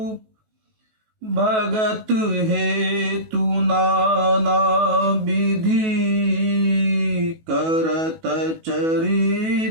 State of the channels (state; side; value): late; left; 18 ms